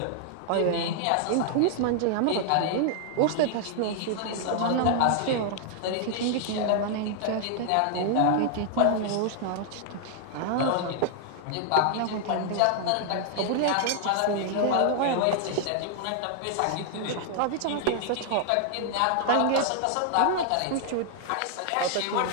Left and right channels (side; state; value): both; different; correlation -0.01